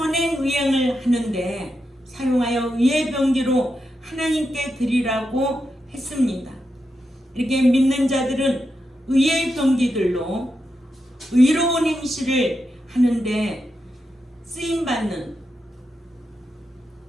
의행을 하는데 사용하여 의의 병기로 하나님께 드리라고 했습니다. 이렇게 믿는 자들은 의의 병기들로 의로운 행실을 하는데 쓰임받는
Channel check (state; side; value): normal; both; correlation 0.86